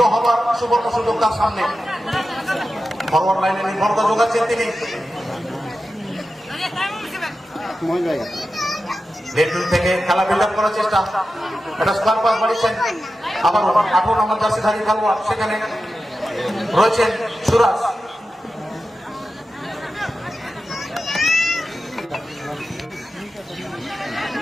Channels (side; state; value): both; normal; correlation 0.92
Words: হবার সুবর্ণ সুযোগ তার সামনে। ফরওয়ার্ড লাইনে নির্ভরতা যোগাচ্ছেন তিনি। লেফট থেকে খেলা বিল্ড আপ করার চেষ্টা, এটা স্কোয়ার পাস বাড়িয়েছেন। আবার 18 নম্বর জার্সিধারী খেলোয়াড় সেখানে রয়েছেন সুরাজ।